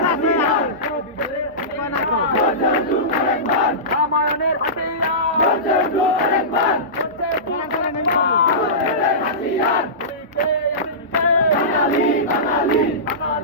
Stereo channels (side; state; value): both; normal; correlation -0.20